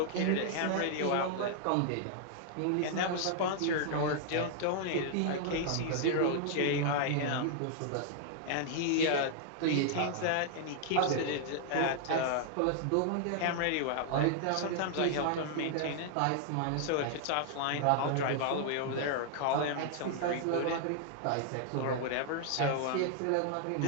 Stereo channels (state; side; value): different; both; correlation 0.00